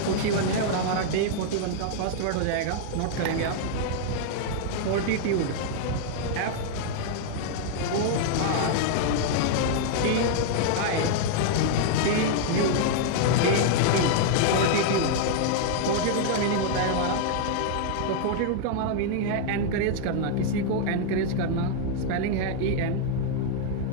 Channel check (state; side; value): different; both; correlation 0.00